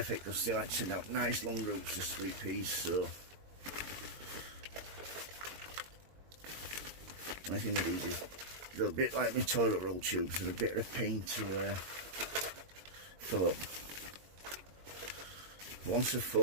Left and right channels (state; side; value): late; left; 22 ms